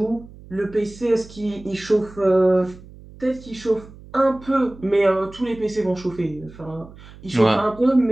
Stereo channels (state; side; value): noise; right; hum, 20 dB below the sound